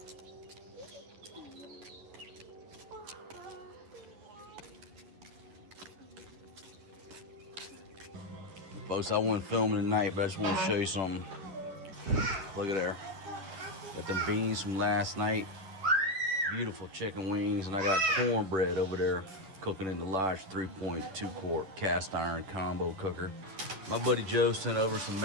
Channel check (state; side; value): late; left; 10 ms